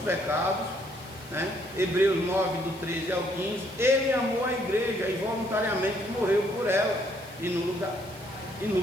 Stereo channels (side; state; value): right; noise; hiss, 22 dB below the sound